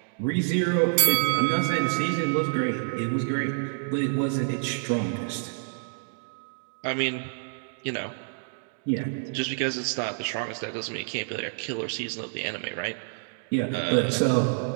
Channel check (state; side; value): silent; left; digital silence